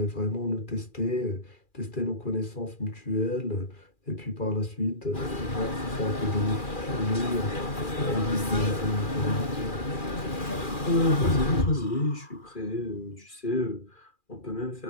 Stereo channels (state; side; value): late; right; 2.4 ms